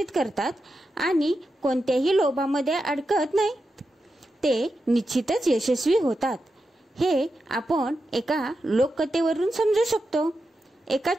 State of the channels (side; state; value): both; normal; correlation 0.88